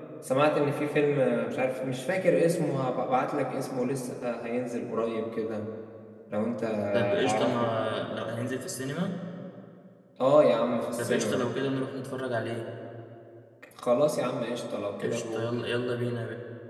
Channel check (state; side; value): identical; both; correlation 1.00